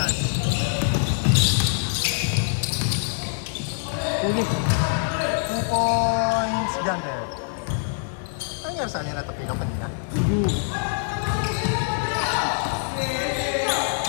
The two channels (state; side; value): silent; right; digital silence